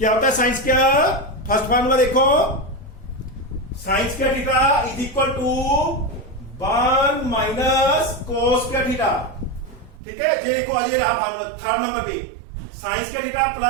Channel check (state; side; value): drops out; left; at 10.0 s